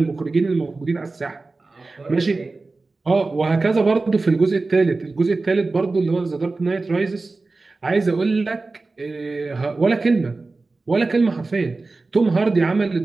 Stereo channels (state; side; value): quieter; left; 3.6 dB